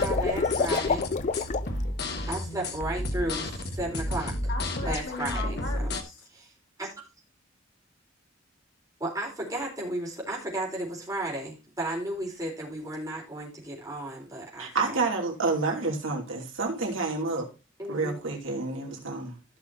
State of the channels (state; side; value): normal; both; correlation 0.29